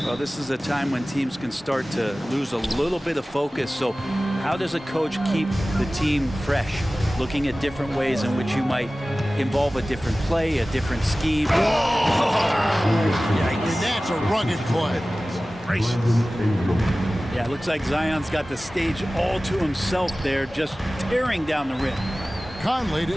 Well, this is a time when teams can start to lose a little bit of focus. So how does a coach keep the team fresh? Looking at different ways in which you might involve a different play, a different scheme. And that's a rugged play. Gracious. Yeah, it looks like Zion's got the stage all to himself there, just tearing down the rim. Conley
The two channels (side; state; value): both; normal; correlation 0.97